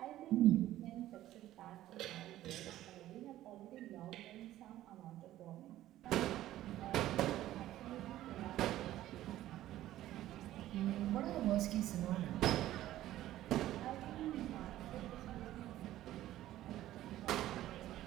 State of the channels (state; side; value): quieter; left; 14.1 dB